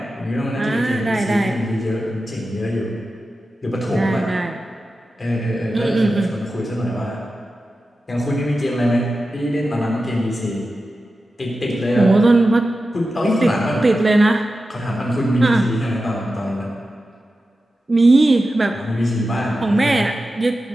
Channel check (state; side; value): normal; both; correlation 0.92